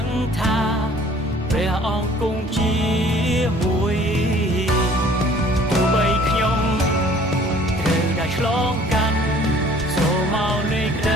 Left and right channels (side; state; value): both; normal; correlation 0.53